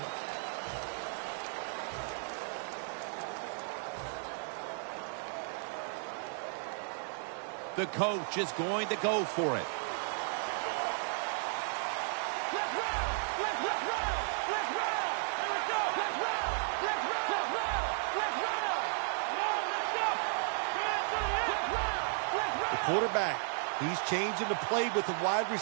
The coach is going to go for it. The quarterback, he's changing the play with the wide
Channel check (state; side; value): silent; left; 55 dB below the other